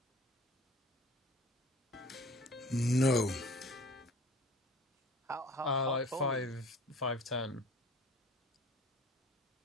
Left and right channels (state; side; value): normal; both; correlation 0.46